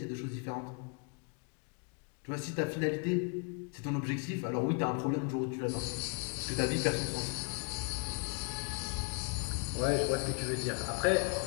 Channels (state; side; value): quieter; right; 35.8 dB